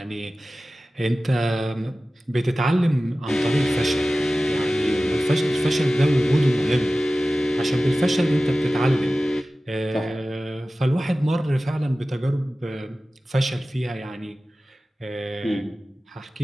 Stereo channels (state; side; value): normal; both; correlation 0.96